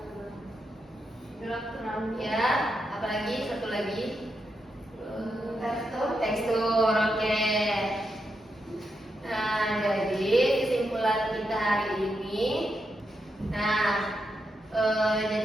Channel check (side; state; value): both; normal; correlation 0.84